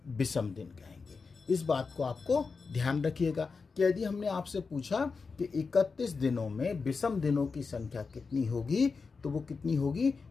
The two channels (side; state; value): right; quieter; 4.7 dB